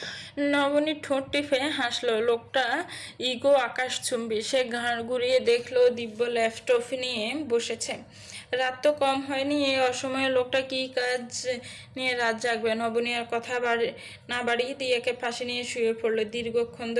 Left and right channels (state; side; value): identical; both; correlation 1.00